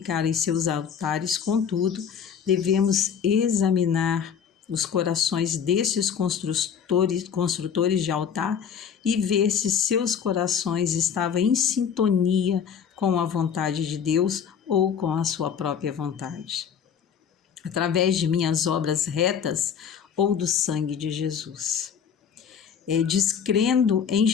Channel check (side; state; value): right; quieter; 7.5 dB